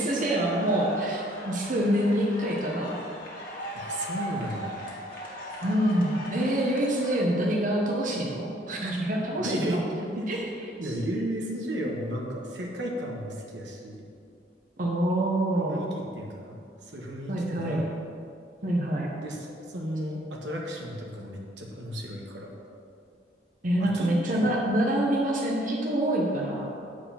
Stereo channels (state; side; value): normal; both; correlation 0.63